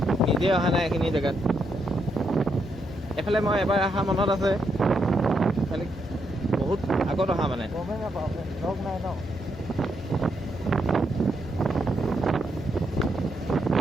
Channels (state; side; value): normal; both; correlation 0.79